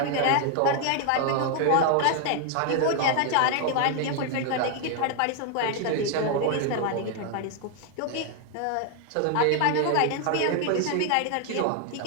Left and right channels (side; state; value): both; different; correlation 0.00